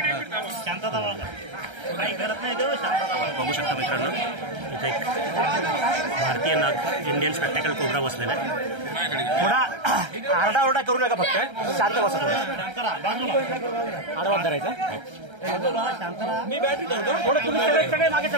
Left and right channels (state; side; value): late; left; 1.3 ms